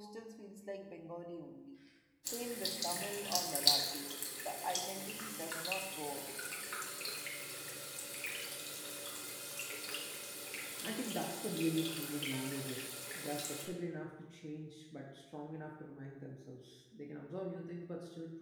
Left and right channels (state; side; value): identical; both; correlation 1.00